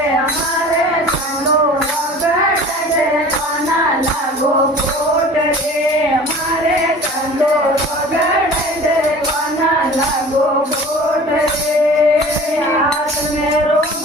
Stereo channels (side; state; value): both; normal; correlation 0.42